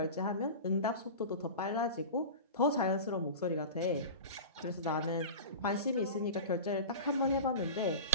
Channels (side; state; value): both; inverted; correlation -0.31